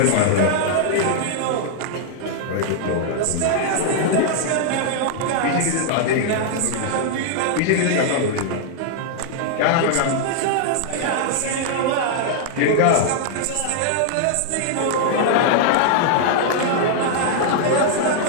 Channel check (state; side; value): different; both; correlation -0.01